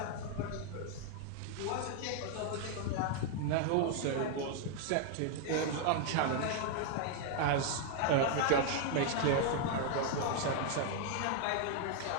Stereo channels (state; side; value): different; both; correlation 0.00